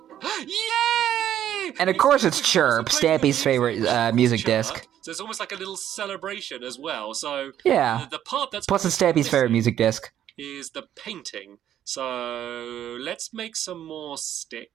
Yay! And of course it's Chirp, Stampy's favorite music disc. So it's almost like a little celebration as well. So Yeah. the part that's plus it's Stampy's favorite music disc is the painting. So let's make some more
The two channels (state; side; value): quieter; left; 10.9 dB